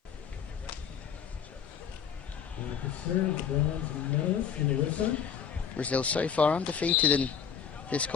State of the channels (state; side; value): quieter; right; 7.6 dB